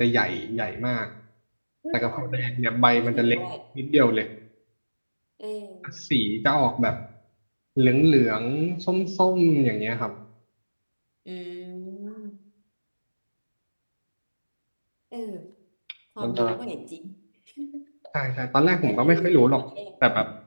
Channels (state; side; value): inverted; both; correlation -1.00